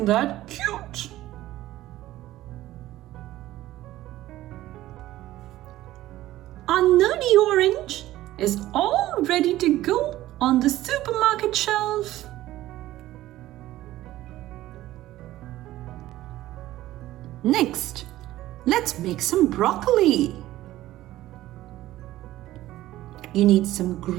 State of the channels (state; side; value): quieter; left; 15.3 dB